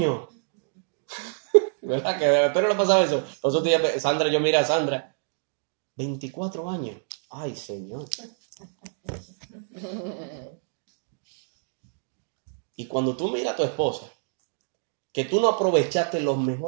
¿Verdad? Que a usted no le pasaba eso. Los otros días, Sandra, yo miré a Sandra. 24 años. Ay, Señor. Y cuando tú miras a tu esposa, que tú no aprovechaste los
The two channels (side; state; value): left; silent; digital silence